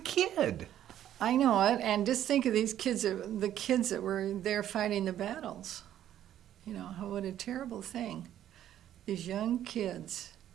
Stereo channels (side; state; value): left; quieter; 11.4 dB